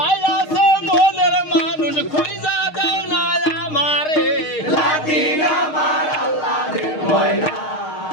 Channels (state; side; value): late; right; 6.5 ms